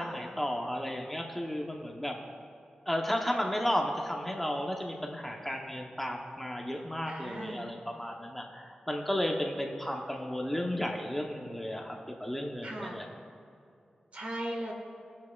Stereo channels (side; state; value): both; normal; correlation 0.95